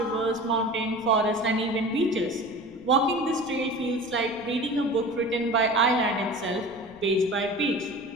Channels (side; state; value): left; noise; rumble, 24 dB below the sound